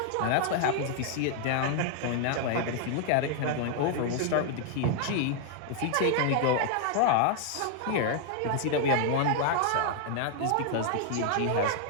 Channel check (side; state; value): both; different; correlation 0.00